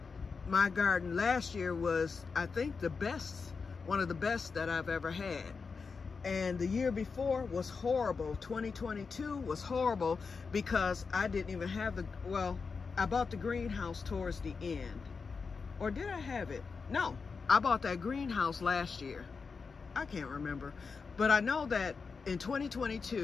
My garden last year was, I think, one of the best that I've ever had. And the year before was horrible. 2022 was horrible because I didn't even have I bought the greenhouse towards the end. Or did I have it? No, I bought that greenhouse last year. I can't remember. But I know that in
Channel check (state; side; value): quieter; right; 5.0 dB